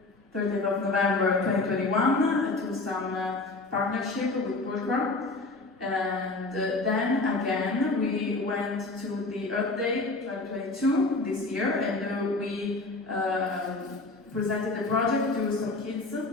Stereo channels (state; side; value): quieter; right; 3.2 dB